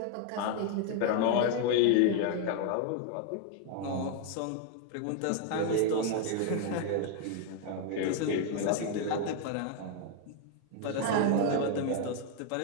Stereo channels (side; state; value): both; different; correlation 0.00